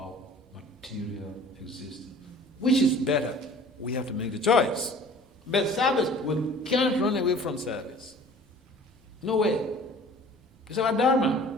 material existence. Which is better? We have to make the choice. But service, we can't run away from service. No way. It's our dharma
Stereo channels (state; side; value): normal; both; correlation 0.47